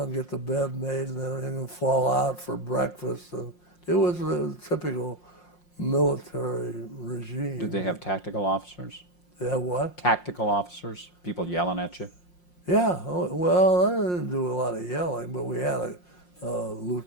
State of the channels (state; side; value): late; right; 5.6 ms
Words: get the bed made and everything, and fall out for breakfast. And it was a typical military regime. Did they have tactical officers? Yeah, what? Tactical officers? People yelling at you? Yeah, well, I didn't do a lot of yelling, but we had a